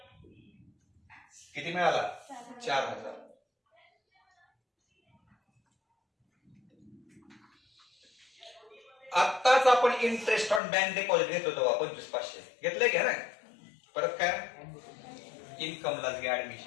किती मिळाला? 4,000. आत्ताच आपण इंटरेस्ट ऑन बँक डिपॉझिट घेत होतो 25,500 घेतलंय घ्या ना. परत काय इन्कमलाच घ्या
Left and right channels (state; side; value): drops out; right; at 10.6 s